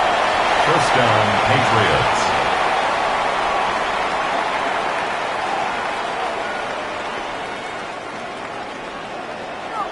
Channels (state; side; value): identical; both; correlation 1.00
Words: First down, Patriots.